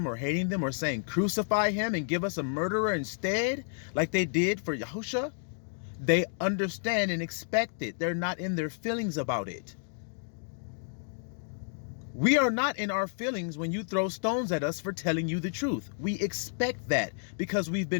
or hating them or saying crucify him and give us a murderer instead, like they did for Yahushua, they understand and expect it. They're not in their feelings about it. We are not in our feelings when you throw stones at us for telling you the truth. We expect that because we've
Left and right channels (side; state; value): right; silent; digital silence